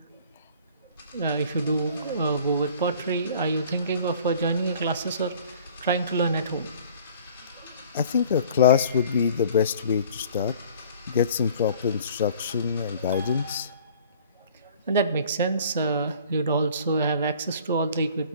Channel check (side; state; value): both; inverted; correlation -0.50